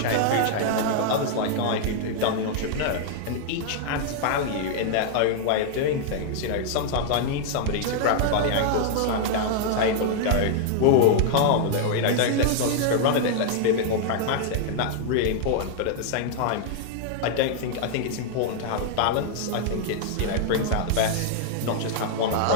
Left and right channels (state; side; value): different; both; correlation -0.01